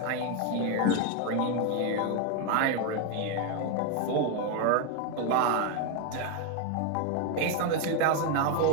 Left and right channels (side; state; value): both; different; correlation 0.01